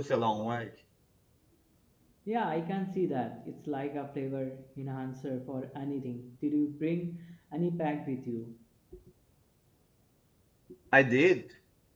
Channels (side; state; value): both; identical; correlation 1.00